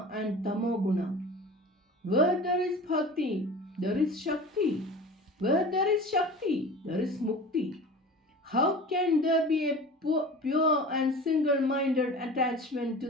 and tamoguna. Where there is bhakti, there is shakti. Where there is shakti, there is mukti. How can there be a pure and single minded attachment to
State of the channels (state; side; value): normal; both; correlation 0.37